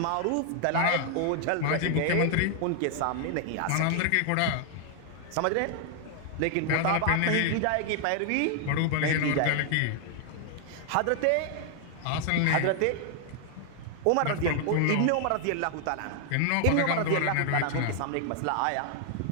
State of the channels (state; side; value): different; both; correlation 0.00